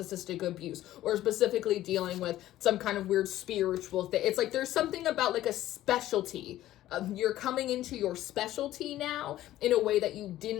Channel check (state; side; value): quieter; right; 14.1 dB